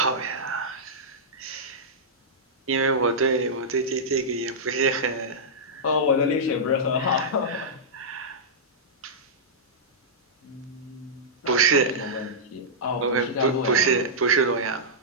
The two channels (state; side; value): normal; both; correlation -0.13